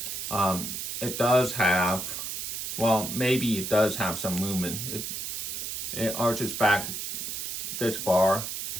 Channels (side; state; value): right; noise; hiss, 4 dB below the sound